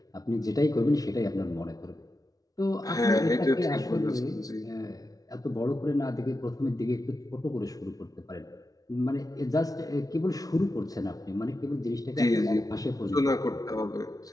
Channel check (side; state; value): right; late; 0.18 ms